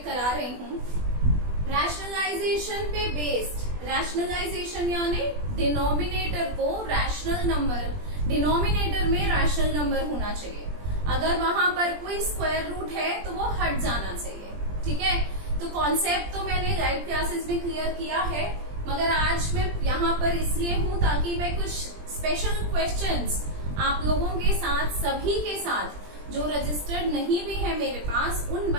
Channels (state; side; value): late; left; 20 ms